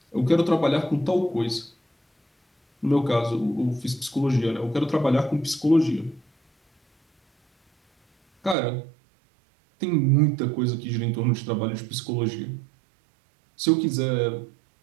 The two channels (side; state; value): left; drops out; at 8.6 s